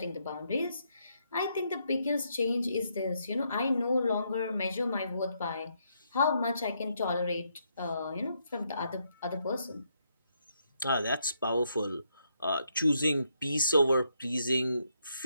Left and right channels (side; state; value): both; inverted; correlation -0.76